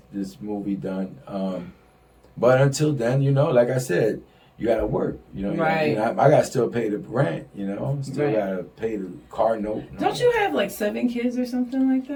movie done. But until then, you know, like I said, you gotta work. You know, Right. I gotta still pay the rent. You know, still Right. gotta pay the car note. don't you have like 7 kids or something like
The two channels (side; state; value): both; identical; correlation 1.00